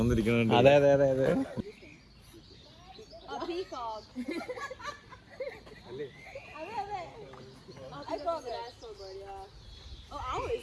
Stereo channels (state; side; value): identical; both; correlation 1.00